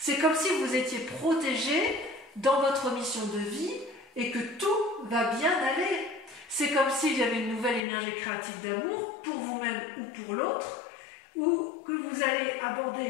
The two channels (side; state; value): right; drops out; at 7.8 s